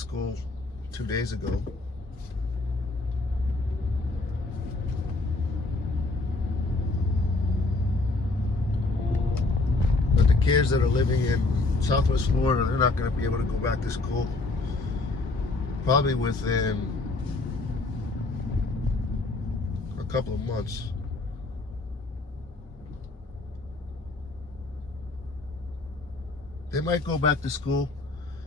2 days ago. But the kids that are living in Southwest Florida, they're not going to be able to go back to school probably within a couple of months. They might go back to school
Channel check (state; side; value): quieter; right; 3.2 dB